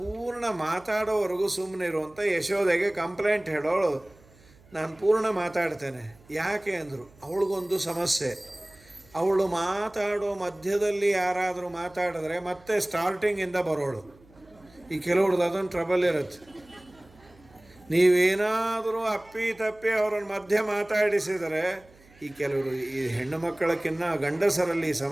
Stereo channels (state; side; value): noise; right; hum, 27 dB below the sound